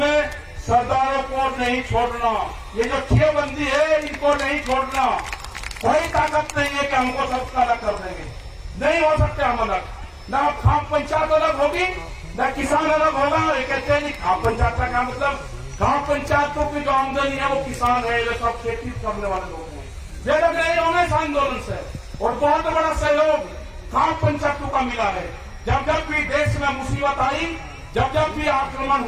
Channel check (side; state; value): both; identical; correlation 1.00